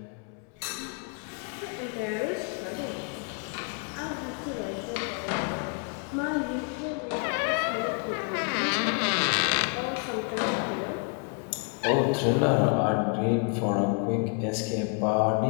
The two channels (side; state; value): right; quieter; 39.3 dB